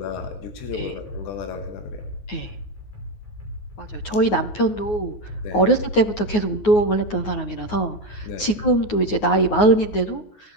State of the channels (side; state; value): right; late; 9.5 ms